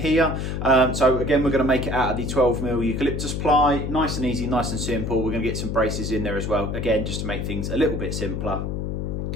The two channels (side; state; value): left; noise; hum, 3 dB below the sound